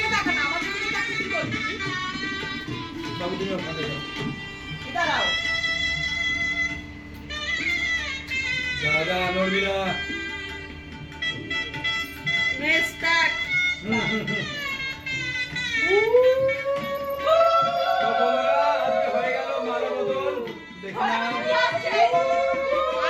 তাকা না, আমার দিকে তাকিয়ে কি করবি? বাবু, তুমি ওখানে যাও। দাঁড়াও। দাদা, নড়বি না। নে স্টার্ট। তো বন্ধুরা, আজকে হয়ে গেল মালা বদল। দেখি না।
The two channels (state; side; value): identical; both; correlation 1.00